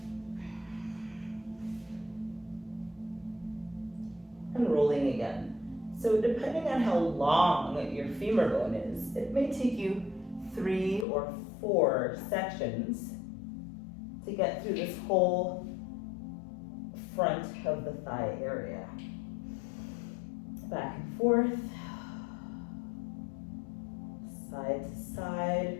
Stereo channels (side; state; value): right; drops out; at 11.1 s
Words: and rolling again. So depending on how long your femur bone is, it may take you 3 or 4 sections to get through this whole front of the thigh area. Back and forth. side to side,